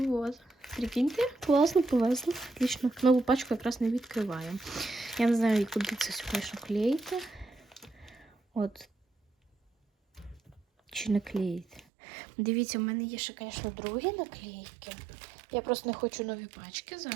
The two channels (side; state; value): left; drops out; at 11.8 s